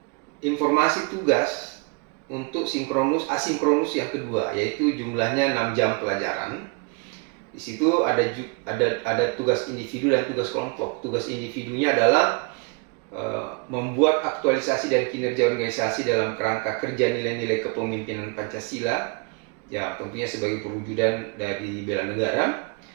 informasi tugas untuk asinkronus yang kedua, yaitu jumlahnya 6 jam pelajaran. Di situ ada tugas individu dan tugas kelompok. Tugas individunya adalah membuat aktualisasi dan kinerja organisasi dalam kerangka kerja nilai-nilai kepemimpinan Pancasila, ya tentunya sebagai perwujudan dari bela negara.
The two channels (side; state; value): left; quieter; 31.1 dB